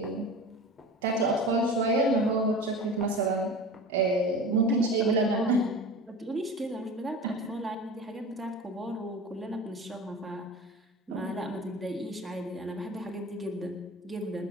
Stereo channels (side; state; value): both; normal; correlation 0.34